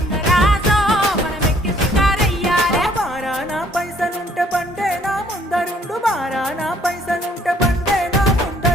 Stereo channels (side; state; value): both; normal; correlation 0.62